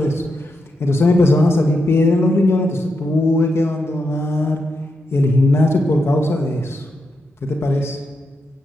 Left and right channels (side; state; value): both; normal; correlation 0.84